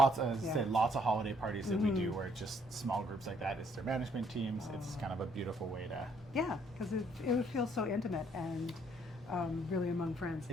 as I Yeah. said, lots of holiday parties that we do where it's just small groups like that. It's their management teams. Oh. It's kind of a beautiful way to Yeah, because it would feel so intimate and really among friends.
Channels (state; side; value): normal; both; correlation 0.66